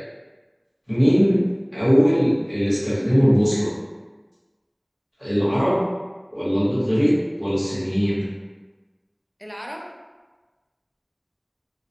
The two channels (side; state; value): both; identical; correlation 1.00